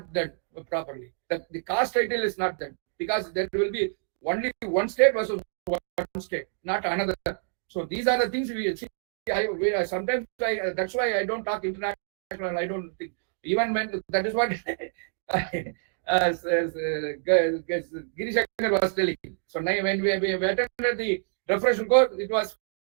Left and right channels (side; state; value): left; silent; digital silence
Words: done properly. The caste title is not done, because there will be only one state versus one state, not another. So these are the things we see. Sometimes that's why I don't talk international. I don't think, even when that is what as Giri Shankar was telling. So now when we attended the refreshment course, it was